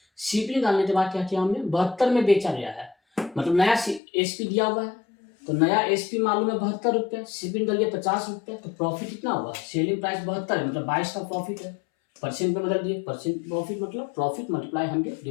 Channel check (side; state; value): right; drops out; at 4.0 s